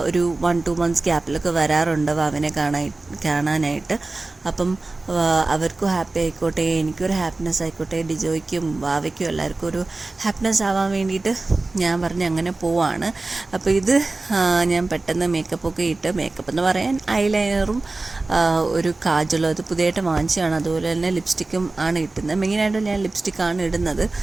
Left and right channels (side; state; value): left; quieter; 3.3 dB